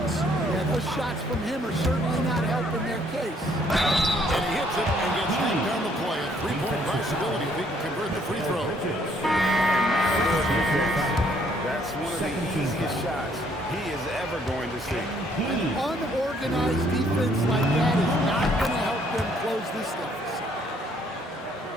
Yeah, those shots from him are certainly not helping their case. And he hits it and gets knocked down the play. A three-point possibility if he can convert the free throw. That's one of the easiest shots he is ever going to see. An unorganized defense like that is not going to help them close this deficit.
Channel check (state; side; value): normal; both; correlation 0.65